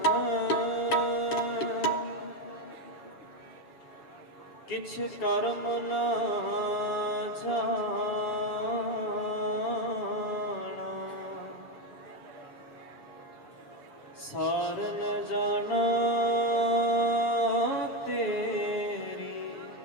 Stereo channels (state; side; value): late; right; 6.8 ms